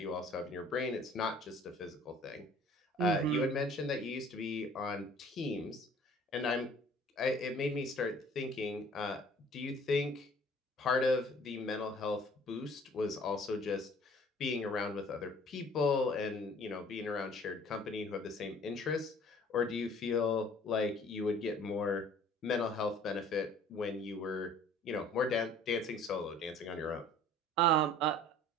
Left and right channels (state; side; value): normal; both; correlation 0.52